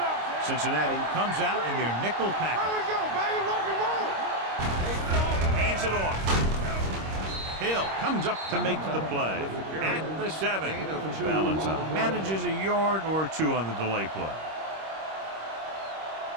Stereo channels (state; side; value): late; left; 26 ms